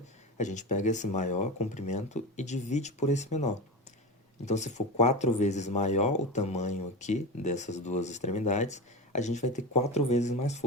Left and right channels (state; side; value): normal; both; correlation 0.24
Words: a gente pega esse maior comprimento e divide por esse menor. Então, se for 4 vezes maior o tamanho aqui dessas duas extremidades, a gente vai ter 4 vezes mais